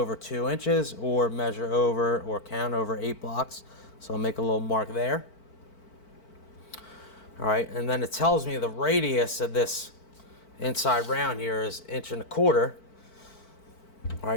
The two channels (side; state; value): right; late; 4.5 ms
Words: 2 inches or measure over or count over 8 blocks. So I'll make a little mark there. All right, and then it tells me the radius of this inside round here is 1.25 inches. All